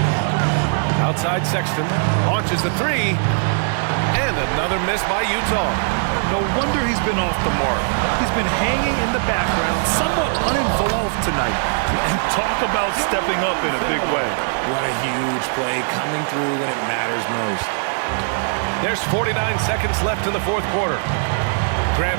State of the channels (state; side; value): silent; left; 66 dB below the other